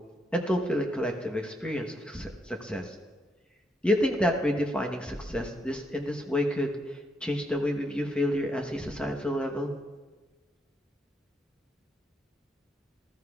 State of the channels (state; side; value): normal; both; correlation 0.77